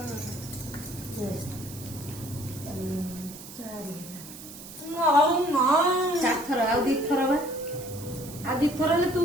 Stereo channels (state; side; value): noise; right; hiss, 14 dB below the sound